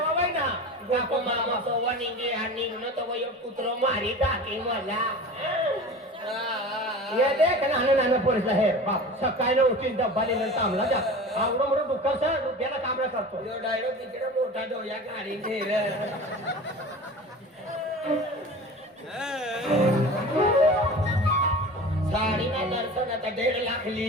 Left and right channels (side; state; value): both; normal; correlation 0.35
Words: बाई ना बापू मामा सोवा निघे आणि निघणं तो एक कुत्रो मारी टाके मला ये देख नाना नाना पोलीस आहे बाप सकाळी उठून डब्बा लिहिलं थांबला जा आवडं मोठं दुःख सर त्याला कामला करतो यो डायरेक्ट तिकडे मोठा डोया गाडी नेर साडी ना दर्शन आता 1.5